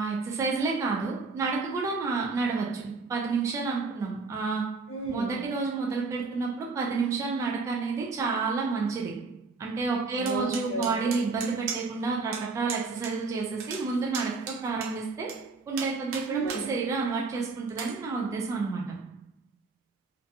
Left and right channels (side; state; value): left; quieter; 4.0 dB